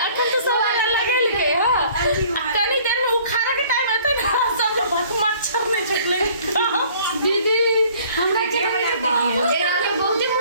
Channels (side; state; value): both; inverted; correlation -0.55